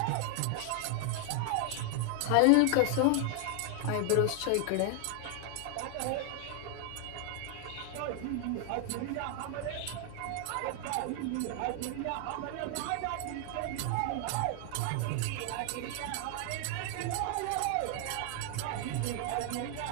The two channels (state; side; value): different; both; correlation 0.00